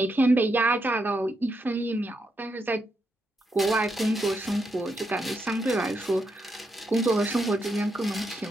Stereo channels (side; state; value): both; normal; correlation 0.81